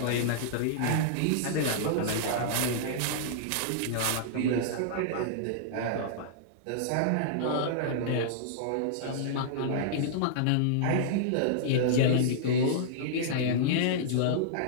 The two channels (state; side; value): different; both; correlation -0.02